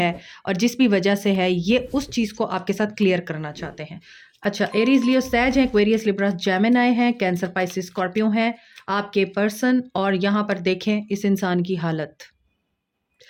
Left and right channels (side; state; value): both; identical; correlation 1.00